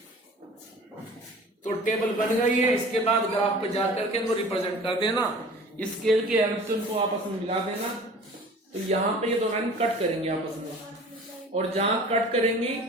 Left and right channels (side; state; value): both; normal; correlation 0.44